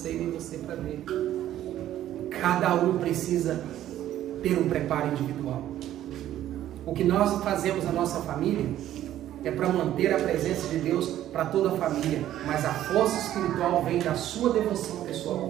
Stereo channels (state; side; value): quieter; left; 12.5 dB